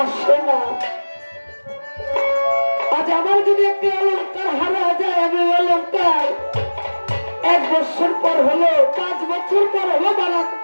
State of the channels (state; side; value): inverted; both; correlation -1.00